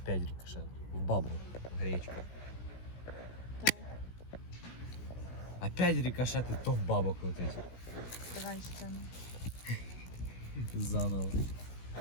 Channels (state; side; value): late; right; 16 ms